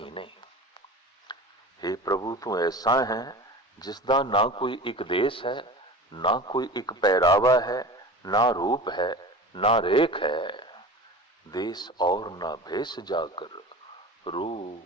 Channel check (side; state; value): both; normal; correlation 0.35